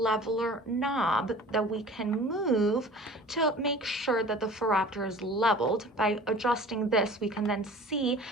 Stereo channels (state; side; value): normal; both; correlation 0.43